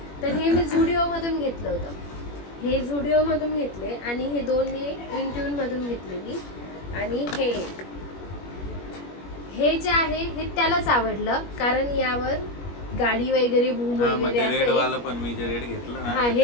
तर हे मी झुडिओ मधून घेतलं होतं. हे झुडिओ मधून घेतले आणि हे 2 हे इंट्यून मधून घेतलेली आणि हे एक. हे जे आहे हे त्यालाच आवडलं कारण यावर गाडी वगैरे भूम वगैरे रेड असे. वाला पण मी जे रेड घेतलं ना हा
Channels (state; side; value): late; right; 21 ms